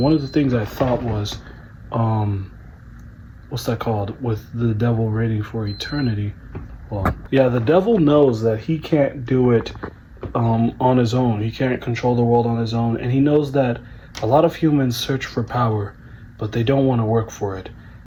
of the things I thought was, what's that called? With the devil reigning for eternity. Well, yeah, the devil knows that he can't do it on his own. He can't control the world on his own. And he knows that a lot of humans search for power, but they don't want to work for it.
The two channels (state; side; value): identical; both; correlation 1.00